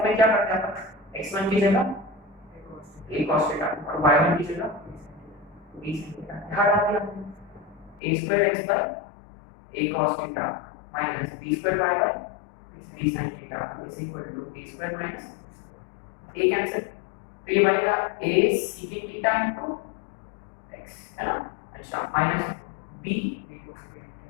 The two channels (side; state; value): right; drops out; at 8.0 s